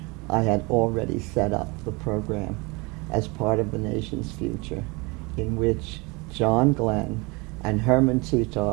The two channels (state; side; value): quieter; left; 27.0 dB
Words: I had already set up the program as part of the nation's future, in which John Glenn and Herman